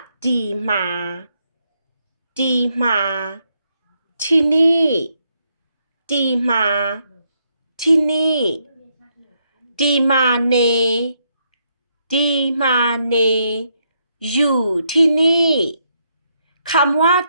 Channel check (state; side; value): inverted; both; correlation -0.77